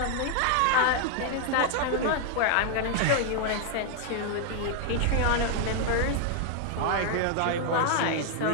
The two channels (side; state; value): both; different; correlation 0.00